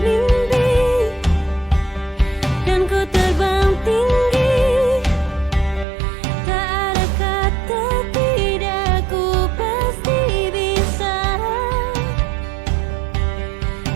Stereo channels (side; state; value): left; drops out; at 5.9 s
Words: mimpi, dan ku terbang tinggi.